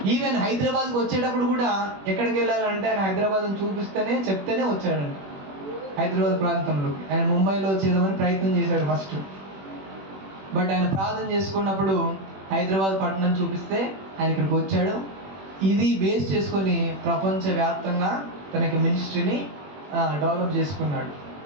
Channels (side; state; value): left; late; 21 ms